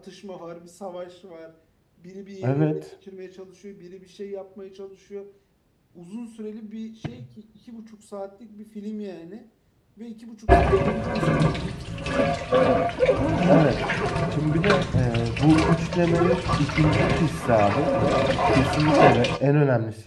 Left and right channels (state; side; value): identical; both; correlation 1.00